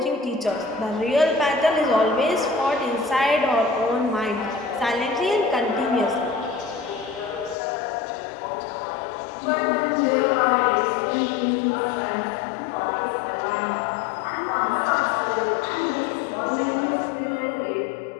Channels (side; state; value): right; drops out; at 7.6 s